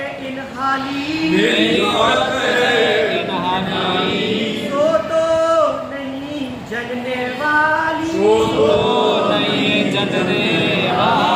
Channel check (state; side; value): identical; both; correlation 1.00